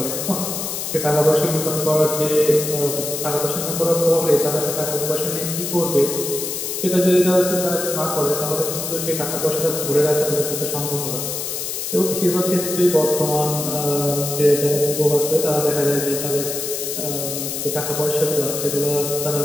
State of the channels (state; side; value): noise; left; hiss, 4 dB below the sound